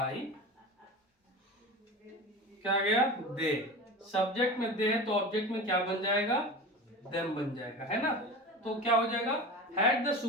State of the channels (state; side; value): normal; both; correlation 0.31